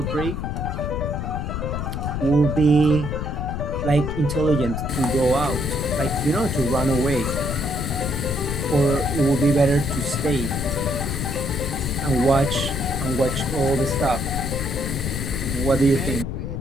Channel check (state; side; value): noise; left; rumble, 3 dB below the sound